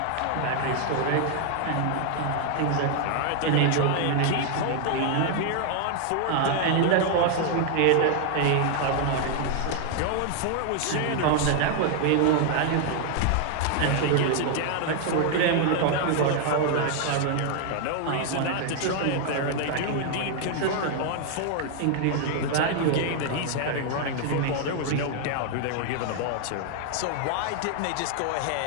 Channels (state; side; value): different; both; correlation 0.00